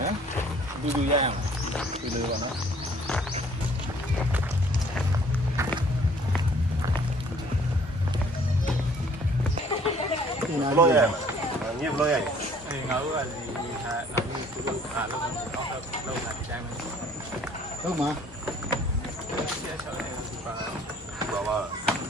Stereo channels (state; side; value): normal; both; correlation 0.56